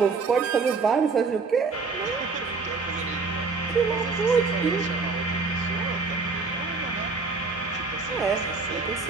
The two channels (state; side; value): quieter; left; 4.4 dB